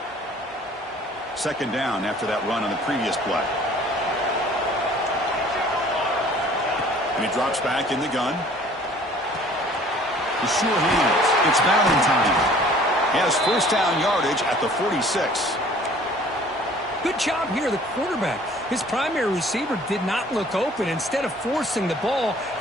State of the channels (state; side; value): normal; both; correlation 0.52